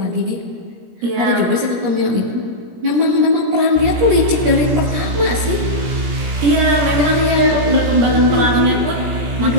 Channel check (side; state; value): left; late; 17 ms